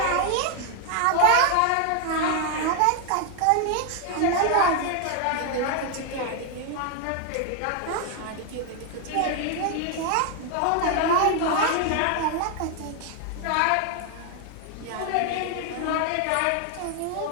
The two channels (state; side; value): different; both; correlation 0.00